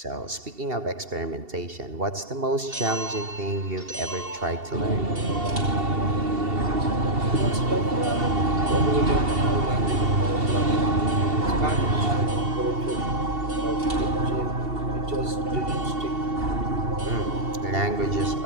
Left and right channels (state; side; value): late; left; 2.7 ms